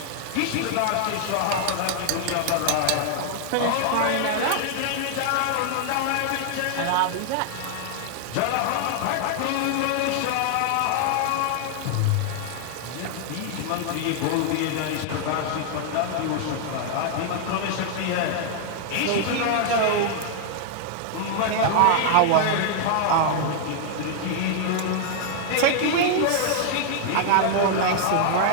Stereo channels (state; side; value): different; both; correlation -0.01